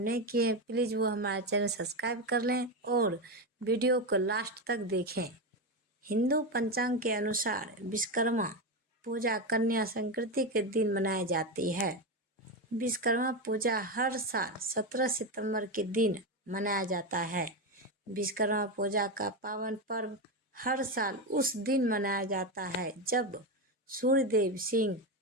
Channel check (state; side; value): normal; both; correlation 0.13